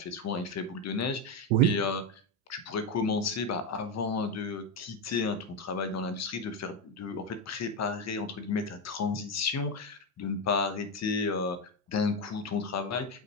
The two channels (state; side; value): normal; both; correlation 0.10